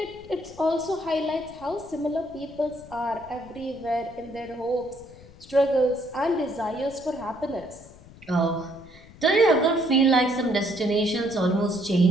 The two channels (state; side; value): noise; left; rumble, 21 dB below the sound